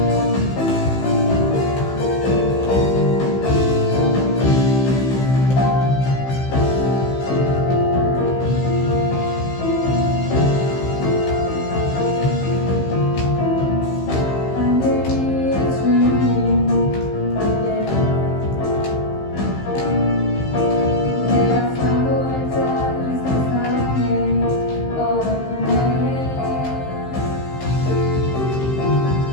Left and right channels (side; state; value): right; late; 15 ms